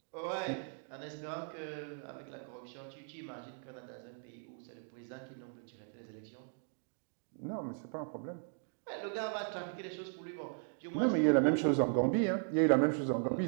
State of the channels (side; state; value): left; silent; 53 dB below the other